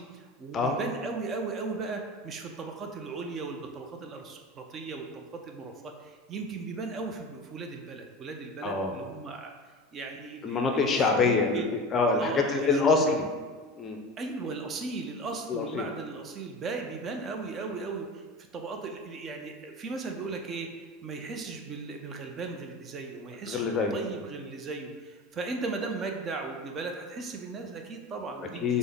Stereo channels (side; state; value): both; normal; correlation 0.32